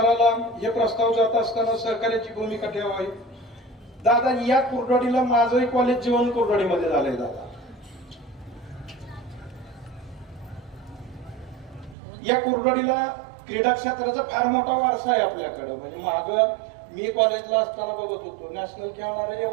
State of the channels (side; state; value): left; drops out; at 12.0 s